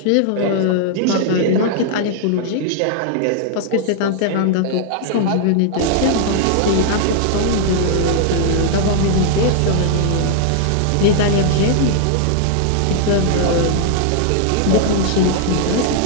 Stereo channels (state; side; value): different; both; correlation 0.00